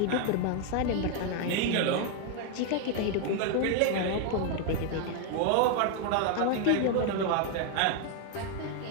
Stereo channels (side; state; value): both; different; correlation 0.00